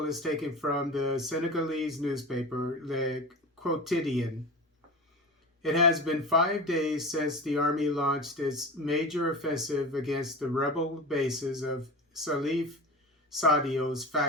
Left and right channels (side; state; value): both; normal; correlation 0.30